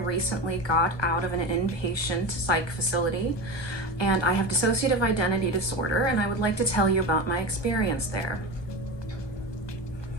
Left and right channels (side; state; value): right; late; 1.3 ms